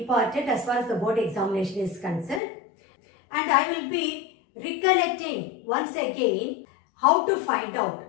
as far as the board examination is concerned. And I will be recollecting once again how to find out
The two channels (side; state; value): right; drops out; at 2.4 s